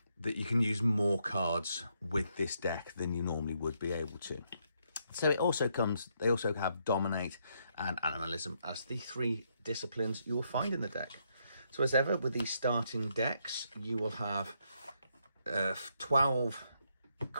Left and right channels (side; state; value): both; inverted; correlation -0.76